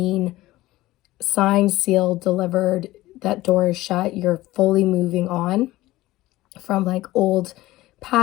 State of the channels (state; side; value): quieter; right; 17.4 dB